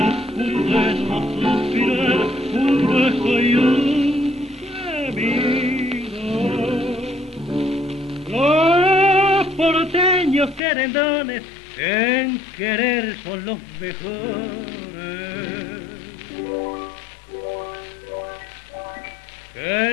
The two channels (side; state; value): right; drops out; at 10.6 s